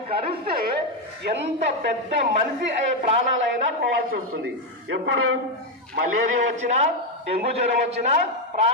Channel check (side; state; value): both; normal; correlation 0.05